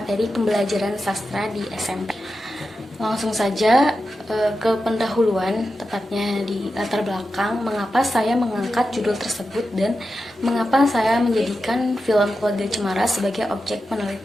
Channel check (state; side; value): normal; both; correlation 0.90